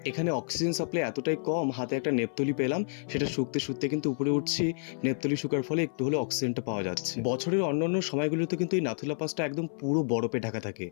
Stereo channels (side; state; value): right; silent; 57 dB below the other